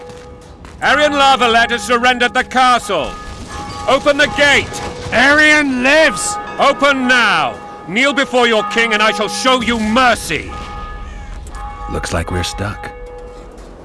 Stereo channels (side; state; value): both; identical; correlation 1.00